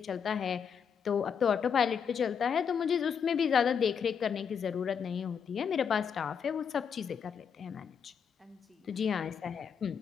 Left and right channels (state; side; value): quieter; right; 7.0 dB